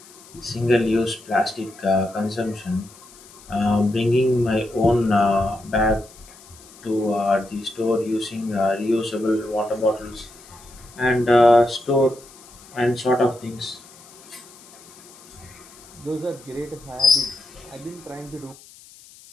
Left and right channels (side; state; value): left; noise; hiss, 22 dB below the sound